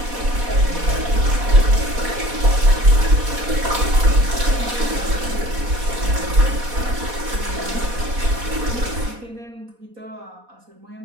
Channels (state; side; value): late; left; 4.1 ms